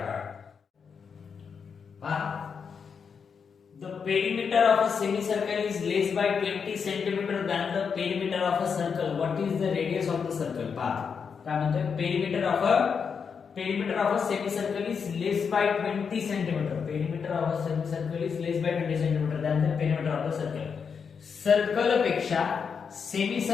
पहा the perimeter of a semicircle is less by 20 centimeter than the perimeter of a circle. What is the radius of the circle? पहा काय म्हणतोय perimeter of a semicircle is less by 20 centimeter. Perimeter of a semicircle is less by 20 centimeter than the perimeter of the circle. Circle पेक्षा सेमी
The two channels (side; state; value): right; quieter; 6.2 dB